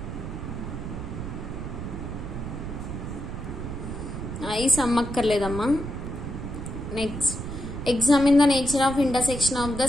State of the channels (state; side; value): noise; right; rumble, 6 dB below the sound